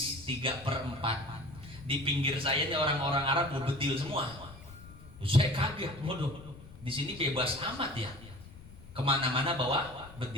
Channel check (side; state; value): left; noise; rumble, 18 dB below the sound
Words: 3/4. Di pinggir saya ini orang-orang Arab berbedil semua. Saya kaget, waduh, di sini bebas amat ya. Kemana-mana bawa